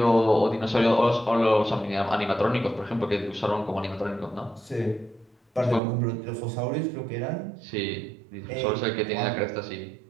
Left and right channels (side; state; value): left; drops out; at 5.8 s